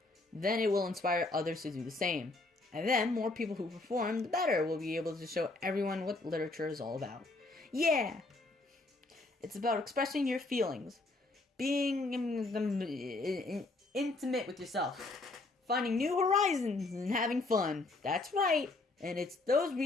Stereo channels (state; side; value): quieter; right; 3.2 dB